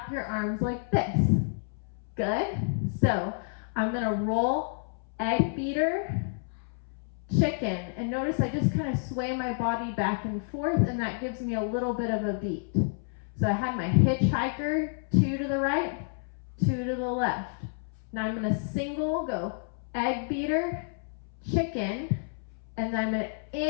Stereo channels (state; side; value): silent; right; 58 dB below the other